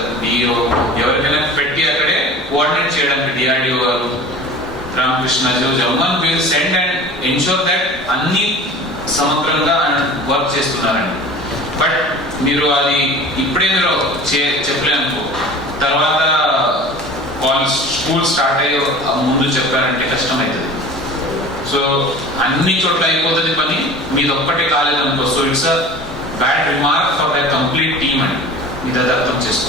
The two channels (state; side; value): normal; both; correlation 0.40